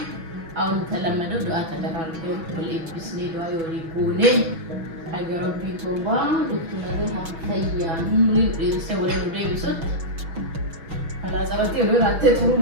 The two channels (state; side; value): late; left; 6.1 ms